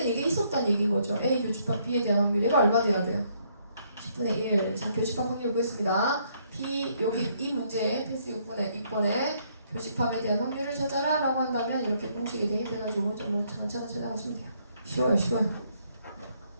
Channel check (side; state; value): both; inverted; correlation -0.70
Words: 이게 있었다는 얘기인 거죠. A 교집합 B에 대한 확률. 얘가 얼마 돼야 돼요? 10분의 1. 자, 교집합 확률 보겠습니다. B, 여기 이 문제에 필수 6번에 교집합에 대한 확률을 찾아라 라고 한다면 이렇게 공식이 대입해가지고 오른쪽으로 차근차근 찾아가시면 돼요. 쉬워요.